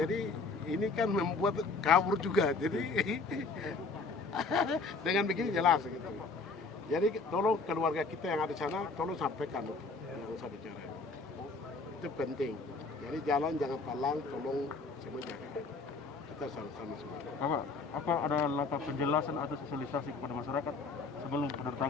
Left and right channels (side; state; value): right; quieter; 3.9 dB